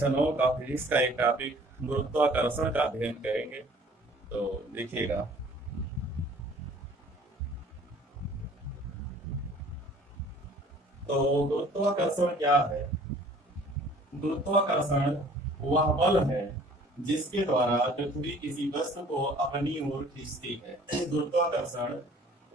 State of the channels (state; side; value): normal; both; correlation 0.52